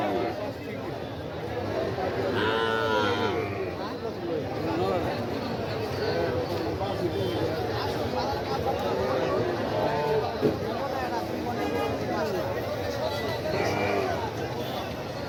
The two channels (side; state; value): both; identical; correlation 1.00